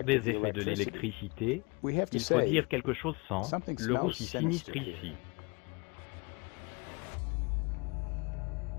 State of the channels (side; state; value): right; quieter; 28.4 dB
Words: des effets de l'électricité. Il faut dire quelque chose sans le roussi sinistre ici.